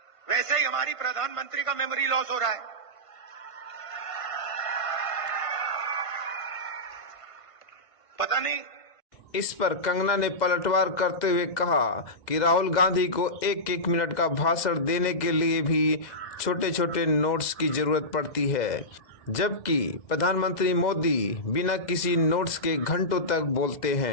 वैसे ही हमारी प्रधानमंत्री का मेमोरी लॉस हो रहा है। पता नहीं। इस पर कंगना ने पलटवार करते हुए कहा कि राहुल गांधी को एक एक मिनट का भाषण देने के लिए भी छोटे छोटे नोट्स की जरूरत पड़ती है, जबकि प्रधानमंत्री मोदी बिना किसी नोट्स के घंटों तक बोलते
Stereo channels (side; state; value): right; late; 2.0 ms